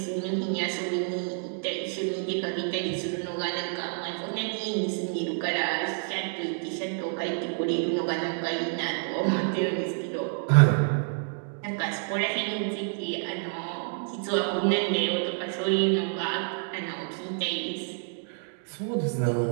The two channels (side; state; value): left; silent; 59 dB below the other